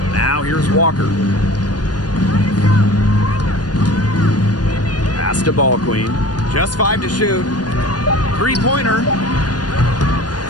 Now here's Walker. Pass to ball queen. Just 5 to shoot. Three-pointer.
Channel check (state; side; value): late; right; 0.69 ms